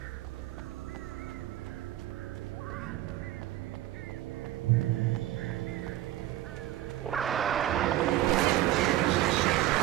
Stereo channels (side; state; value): left; quieter; 14.3 dB